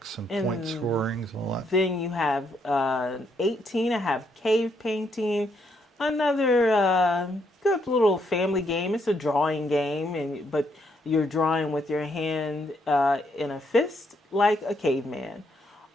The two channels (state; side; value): normal; both; correlation 0.74